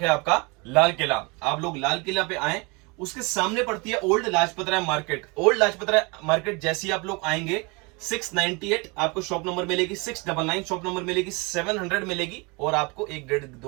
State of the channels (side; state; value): left; quieter; 28.7 dB